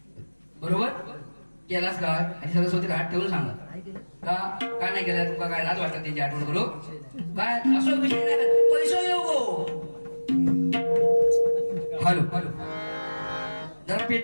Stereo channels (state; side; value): inverted; both; correlation -1.00